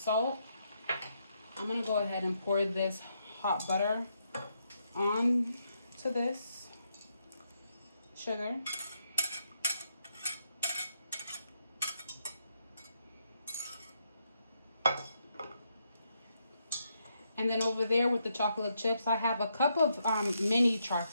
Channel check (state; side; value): inverted; both; correlation -0.79